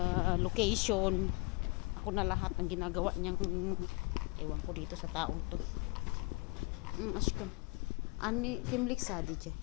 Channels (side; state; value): right; quieter; 26.1 dB